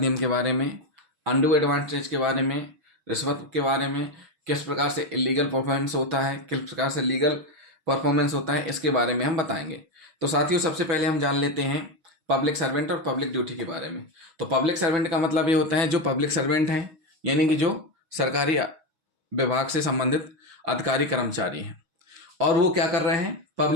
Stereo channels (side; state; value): left; late; 6.3 ms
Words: के बारे में, अनडू एडवांटेज के बारे में, रिश्वत के बारे में, किस प्रकार से इलीगल परफॉर्मेंस होता है, किस प्रकार से लीगल परफॉर्मेंस होता है, इसके बारे में हम बताएंगे। तो साथियों, सबसे पहले हम जान लेते हैं पब्लिक सर्वेंट और पब्लिक ड्यूटी के बारे में। तो पब्लिक सर्वेंट का मतलब ये होता है जो पब्लिक सर्वेंट हैं, यानी कि जो सरकारी विभाग से संबंधित अधिकारी कर्मचारी हैं और वो क्या कर रहे हैं,